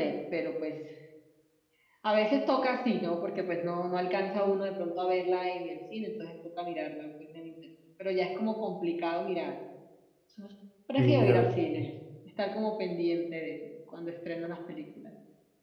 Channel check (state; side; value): identical; both; correlation 1.00